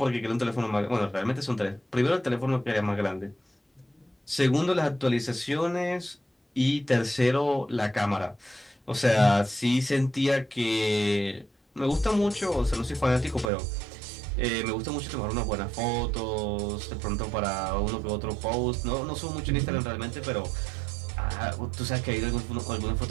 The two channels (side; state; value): left; drops out; at 13.5 s